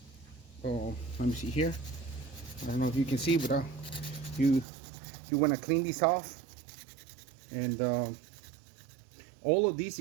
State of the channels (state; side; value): drops out; left; at 4.7 s